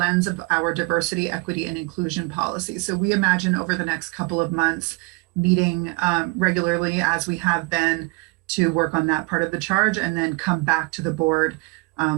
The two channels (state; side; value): quieter; left; 27.4 dB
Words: of our diversity, equity, and inclusion policy. So we imagine over the next couple of months meeting regularly, as we have been, to work on that part of the charge, and then come back to the board